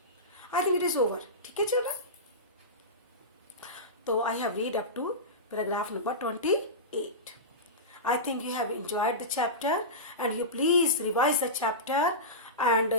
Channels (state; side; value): normal; both; correlation -0.18